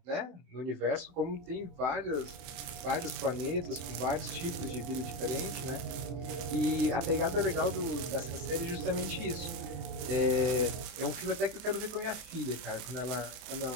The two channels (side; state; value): left; late; 24 ms